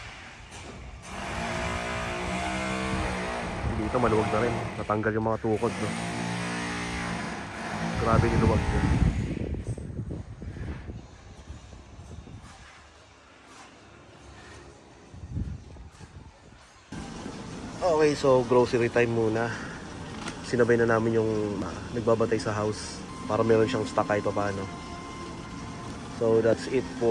Dito maluwag na rin, natanggal yung mga tukod, no? Grabe niluwag yun. Okay, so grocery time muna. Sinabay na namin yung nagbabantay sa house para meron siyang stock kahit pa paano. So that's it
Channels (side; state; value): both; identical; correlation 1.00